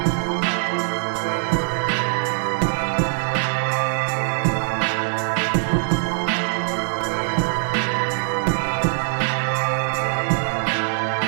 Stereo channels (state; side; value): silent; left; digital silence